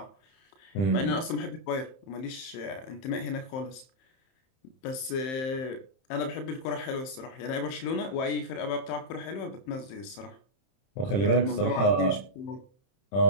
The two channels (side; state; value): right; late; 31 ms